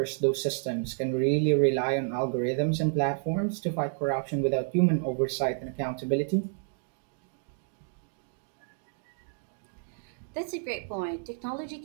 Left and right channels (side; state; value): left; silent; digital silence